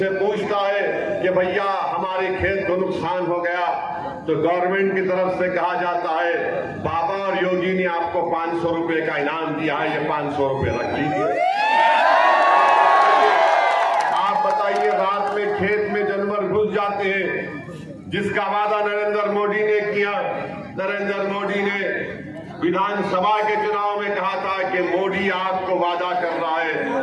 पूछता है कि भैया हमारे खेत को नुकसान हो गया, तो गवर्नमेंट की तरफ से कहा जाता है बाबा और योगी ने आपको 500 रुपए का इनाम दिया है, ये 500 रुपए रख लीजिए। आप बताइए, रात में खेत में जानवर घुस जाते हैं, जिसका वादा नरेंद्र मोदी ने किया। नरेंद्र मोदी ने विधानसभा के चुनाव में कहा था कि मोदी आपको वादा कर रहा है।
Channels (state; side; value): identical; both; correlation 1.00